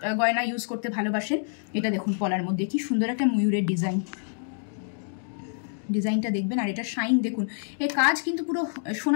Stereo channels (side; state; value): right; silent; digital silence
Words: গয়না ইউজ করতে ভালোবাসেন, এটা দেখুন পলার মধ্যে কি সুন্দর একটা ময়ূরের ডিজাইনটা দেখবেন। আর এটা শাইন দেখুন, এই কাজ কিন্তু পুরো